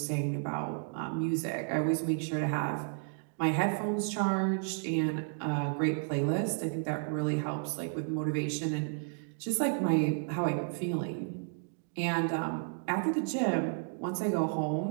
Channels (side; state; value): left; silent; 56 dB below the other